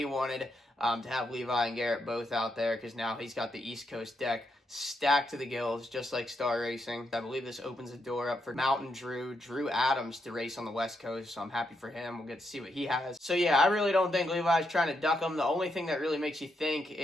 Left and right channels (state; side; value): normal; both; correlation 0.81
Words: to have Levi and Garrett both out there because now he's got the East Coast deck stacked to the gills, just like Star Racing. I believe this opens the door up for Mountain Drew Adams to race on the West Coast, so I'm happy for him. We'll get to see what he has. So yeah, I really don't think Levi's trying to duck him. The only thing that really makes you think